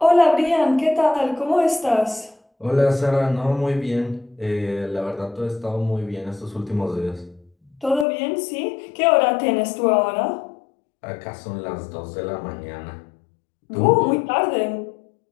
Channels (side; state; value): right; drops out; at 8.1 s